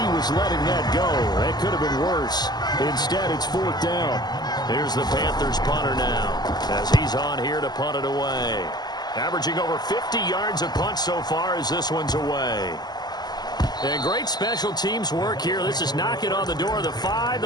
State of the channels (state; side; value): late; right; 0.20 ms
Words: was letting that go. That could have been worse. Instead, it's 4th down. Here's the Panthers punter now as he's on here to punt it away. Averaging over 50 yards a punt so far as this one's away. And great special teams work here. This is knocking on the door of the 5.